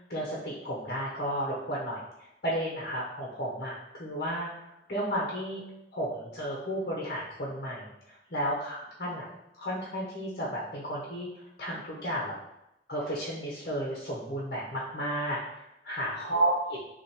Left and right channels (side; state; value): both; normal; correlation -0.02